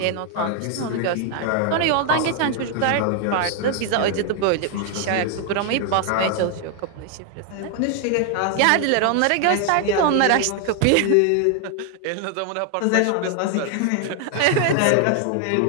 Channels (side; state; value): both; different; correlation 0.00